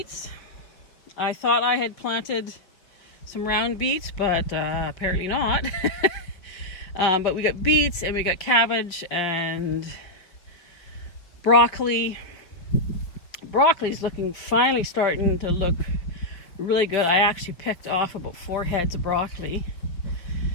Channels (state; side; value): late; right; 5.4 ms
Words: I thought I had planted some round beets, but apparently not. But we got beets and we got cabbage and broccoli. Broccoli's finally starting to look really good. I actually picked off about 4 heads of broccoli